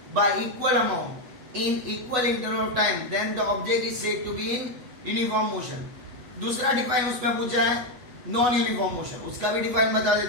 by equal amount in equal interval of time, then the object is said to be in uniform motion. दूसरा define उसमें पूछा है non uniform motion, उसका भी define बता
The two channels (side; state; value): left; late; 8.2 ms